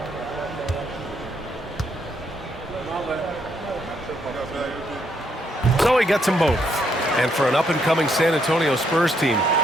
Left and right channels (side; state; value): both; normal; correlation 0.74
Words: So he gets them both. And for an up-and-coming San Antonio Spurs team,